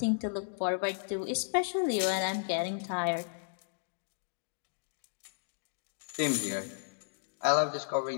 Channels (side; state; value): right; silent; digital silence